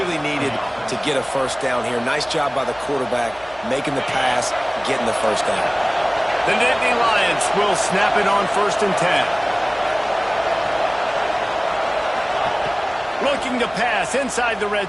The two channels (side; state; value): left; noise; hum, 26 dB below the sound